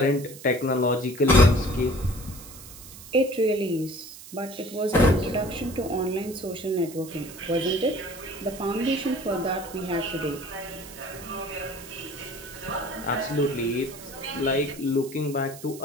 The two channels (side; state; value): right; noise; hiss, 16 dB below the sound